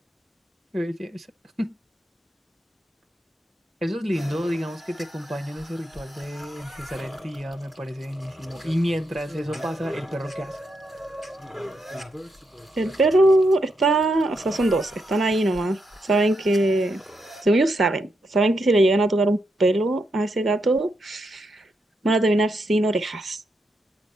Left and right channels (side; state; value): both; normal; correlation 0.82